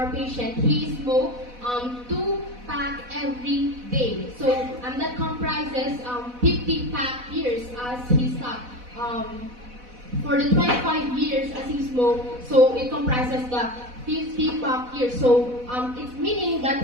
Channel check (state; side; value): late; left; 4.1 ms